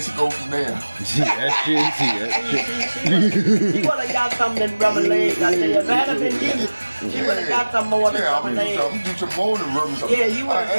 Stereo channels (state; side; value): inverted; both; correlation -1.00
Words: she go from there. See that shit. See that shit. She would have got something than rubbing legs. I tell you, if that had been you, she would have got some more than Yeah, I'm rubbing gonna legs. do some more than rubbing something. Yeah, you would've I